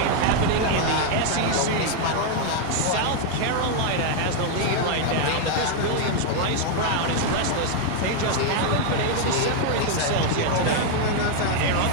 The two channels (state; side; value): different; both; correlation 0.00